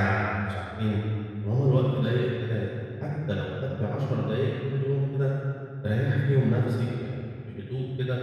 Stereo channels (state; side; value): identical; both; correlation 1.00